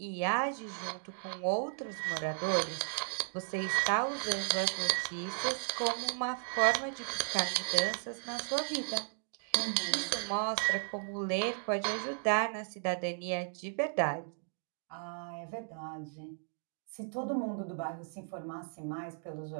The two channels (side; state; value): left; silent; digital silence